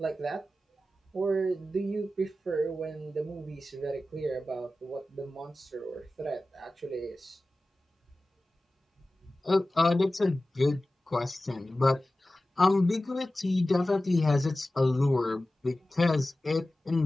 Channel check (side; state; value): both; normal; correlation 0.95